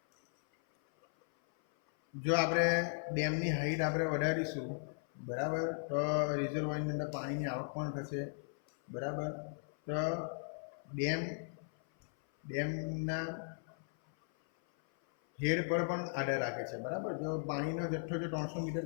જો આપણે ડેમની હાઈટ આપણે વધારીશું, બરાબર, તો રિઝર્વોયરની અંદર પાણીની આવક પણ થશે, બરાબર. તો ડેમના હેડ પર પણ આધાર રાખે છે, બરાબર. જો પાણીનો જથ્થો જો 300 મીટર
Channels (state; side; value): silent; right; 53 dB below the other